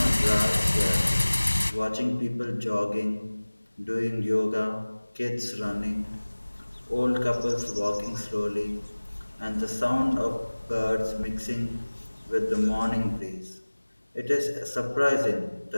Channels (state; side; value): inverted; both; correlation -1.00